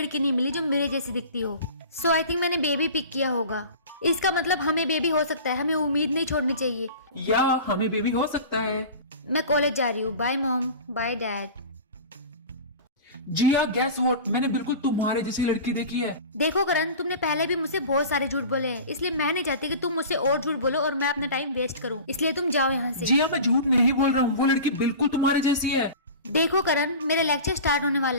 नहीं मिली जो मेरे जैसी दिखती हो। सो आई थिंक मैंने बेबी पिक किया होगा। इसका मतलब हमें बेबी हो सकता है, हमें उम्मीद नहीं छोड़नी चाहिए। या हमें बेबी हो सकता है। मैं कॉलेज जा रही हूँ। Bye mom, bye dad. Jiya, guess what, मैंने बिल्कुल तुम्हारे जैसी लड़की देखी है। देखो करण, तुमने पहले भी मुझसे बहुत सारे झूठ बोले हैं, इसलिए मैं नहीं चाहती कि तुम मुझसे और झूठ बोलो और मैं अपना टाइम वेस्ट करूं। इसलिए तुम जाओ यहाँ से। जिया, मैं झूठ नहीं बोल रहा हूँ, वो लड़की बिल्कुल तुम्हारे जैसी है। देखो करण, मेरा लेक्चर स्टार्ट होने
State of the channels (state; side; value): inverted; both; correlation -0.36